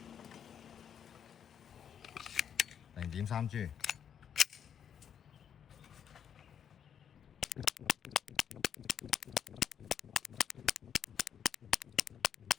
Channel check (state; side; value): quieter; right; 8.4 dB